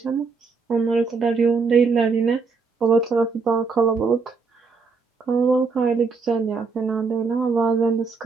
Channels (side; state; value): left; quieter; 4.7 dB